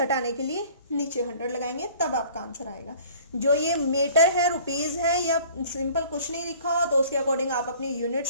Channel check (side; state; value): both; inverted; correlation -0.50